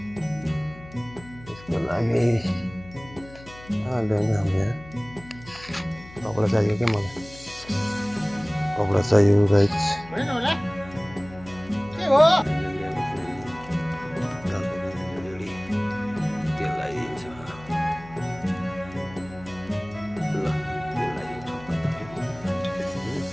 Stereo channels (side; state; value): left; noise; hum, 19 dB below the sound